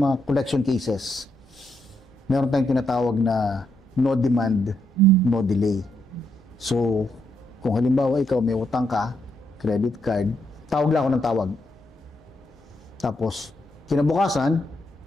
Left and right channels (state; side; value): normal; both; correlation 0.79